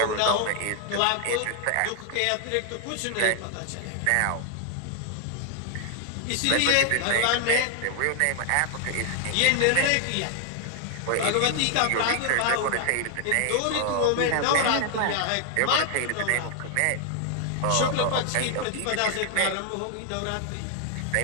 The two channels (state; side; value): different; both; correlation 0.00